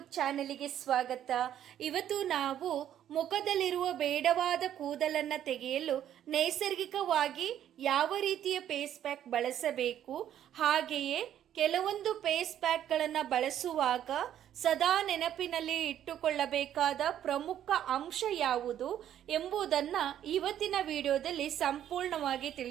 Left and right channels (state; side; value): quieter; left; 10.8 dB